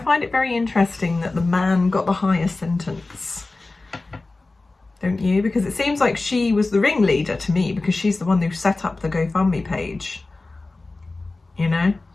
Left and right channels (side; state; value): right; quieter; 3.3 dB